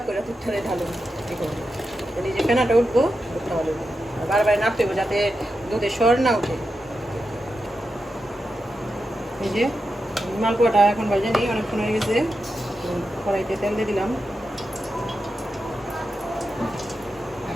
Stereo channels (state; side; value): normal; both; correlation 0.89